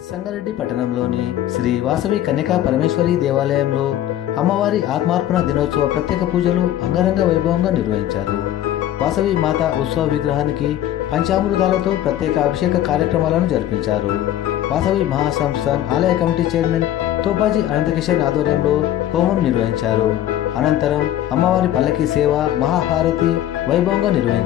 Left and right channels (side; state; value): right; quieter; 12.3 dB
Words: సంగారెడ్డి పట్టణంలోని శ్రీ వాసవి కన్యకా పరమేశ్వరి దేవాలయంలో అమ్మవారి ఆత్మార్పణ దినోత్సవ ప్రత్యేక పూజలు అంగరంగ వైభవంగా నిర్వహించారు. వాసవి మాత ఉత్సవ విగ్రహానికి పంచామృతాలతో ప్రత్యేక అభిషేక కార్యక్రమాలను జరిపించారు. వాసవి మహాసంస్థాన్ ఆలయ కమిటీ చైర్మన్ తోపాజీ అనంతకిషన్ ఆధ్వర్యంలో హోమం నిర్వహించారు. అనంతరం అమ్మవారి పల్లకి సేవ మహాహారతి వైభవంగా